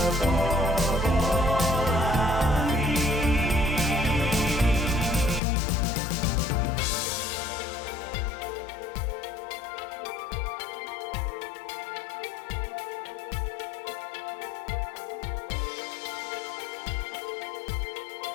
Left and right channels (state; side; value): drops out; right; at 5.4 s